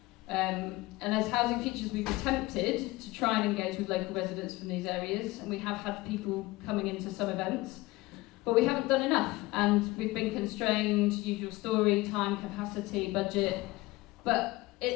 And as Housing Futures, we've attempted to try and engage with local residents from these areas, and we have had people coming into some events, but we haven't done enough, and we've been constrained, usual story, time, capacity, budget, but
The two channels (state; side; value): quieter; right; 20.4 dB